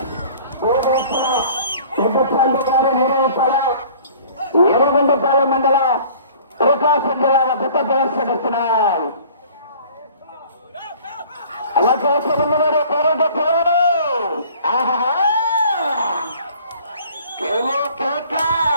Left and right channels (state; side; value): inverted; both; correlation -0.50